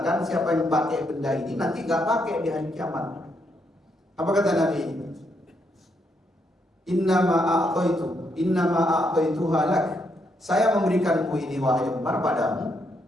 siapa yang pakai benda ini nanti gak pakai di hari kiamat? Apa kata Nabi? Innama a'taituha lak. Saya memberikanmu ini wahai Umar padamu.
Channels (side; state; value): both; normal; correlation 0.77